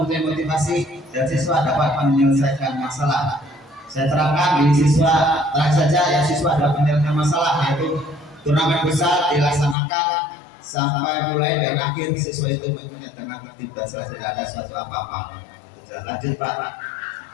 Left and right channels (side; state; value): right; drops out; at 9.8 s